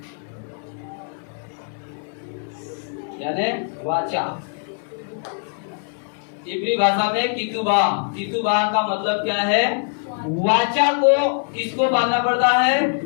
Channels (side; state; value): right; silent; 60 dB below the other